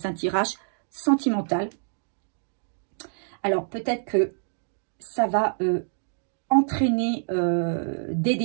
un tirage sentimental. Alors, peut-être que ça va entraîner des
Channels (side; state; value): left; silent; digital silence